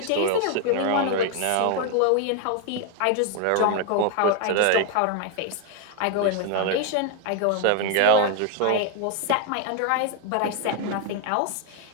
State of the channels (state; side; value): different; both; correlation 0.00